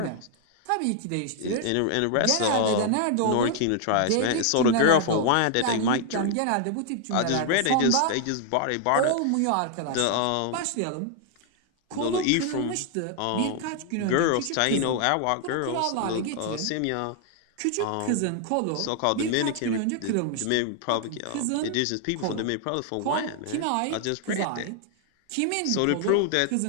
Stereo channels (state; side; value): different; both; correlation 0.00